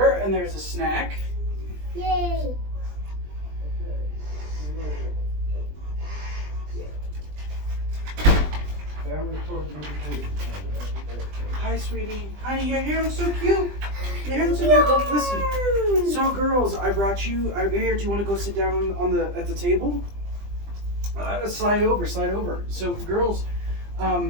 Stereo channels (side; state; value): left; late; 20 ms